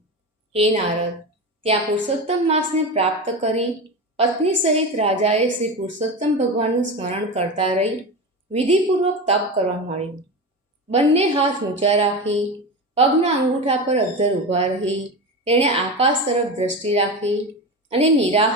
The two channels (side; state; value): both; normal; correlation 0.22